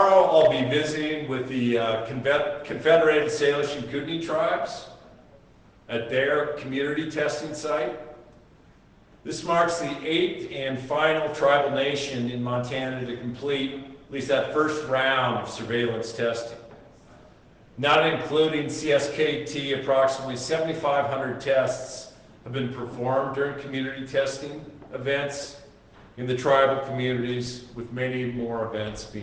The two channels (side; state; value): both; identical; correlation 1.00